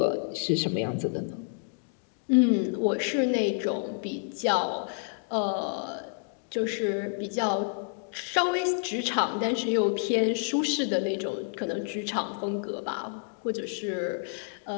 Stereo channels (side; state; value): right; silent; digital silence